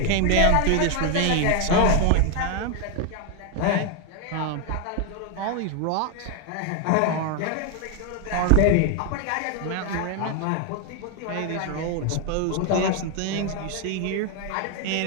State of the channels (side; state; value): both; different; correlation 0.01